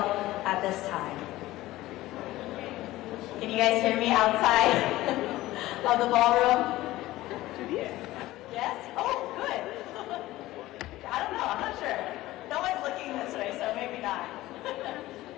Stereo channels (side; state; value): right; quieter; 16.8 dB